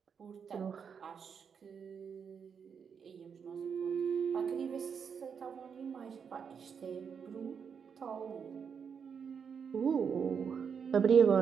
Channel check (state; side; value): quieter; left; 6.7 dB